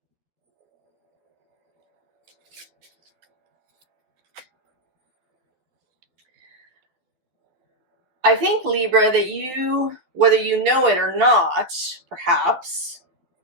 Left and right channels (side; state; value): left; late; 12 ms